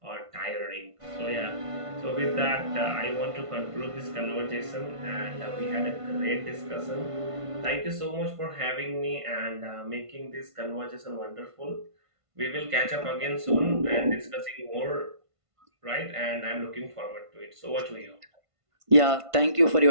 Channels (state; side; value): late; left; 1.5 ms